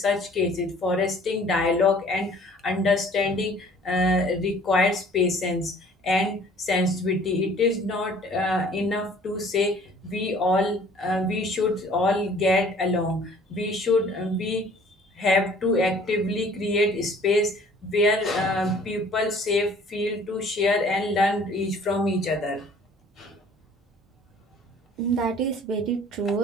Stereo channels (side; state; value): both; normal; correlation 0.53